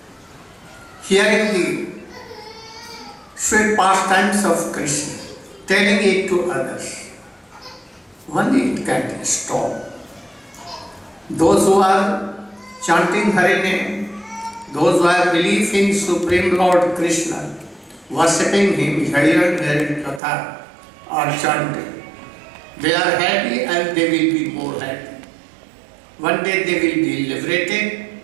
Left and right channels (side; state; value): left; drops out; at 20.2 s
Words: hearing the sweet pastimes of Krishna, telling it to others, only it can stop. Those who are chanting Hare name, those who have belief in Supreme Lord Krishna, worshipping him, hearing their katha or chanting, they are happy and they will be more happy. One day they will be liberated